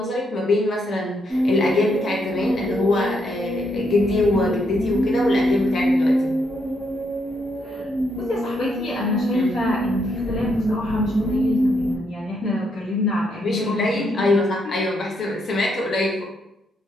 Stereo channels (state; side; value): normal; both; correlation 0.77